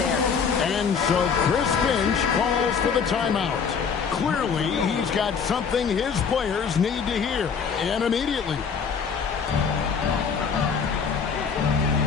And so Chris Finch calls for the timeout. Clearly, he's got something his players need to hear, and immediately.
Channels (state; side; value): quieter; right; 6.2 dB